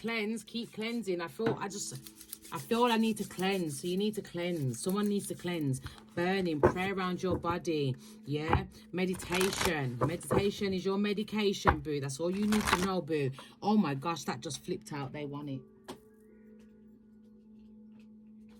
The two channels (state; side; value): identical; both; correlation 1.00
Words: Keep cleansing. I feel I need to cleanse. So you need to cleanse. Someone needs to cleanse. Burning. Pray around your body. Yeah. Meditation. Meditation is your medication, boo. That's all you need to know, boo. Oh my gosh, that just flipped out. They want it.